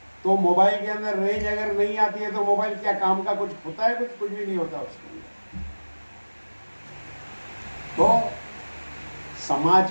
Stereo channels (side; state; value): both; inverted; correlation -1.00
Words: तो मोबाइल के अंदर रेंज अगर नहीं आती है तो मोबाइल क्या काम का कुछ होता है? कुछ भी नहीं होता उसके अंदर। तो समाज